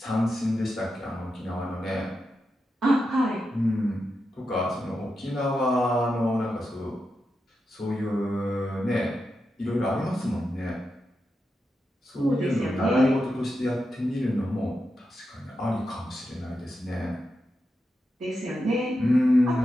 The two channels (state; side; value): normal; both; correlation 0.88